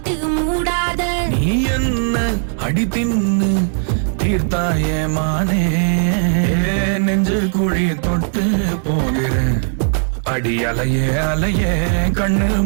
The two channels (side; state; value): left; silent; digital silence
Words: மூடாத நீ என்ன அடி தின்னு தீர்த்தாய மானே நெஞ்சு குழி தொட்டு போகிற அடி அலைய அலைய கண்ணு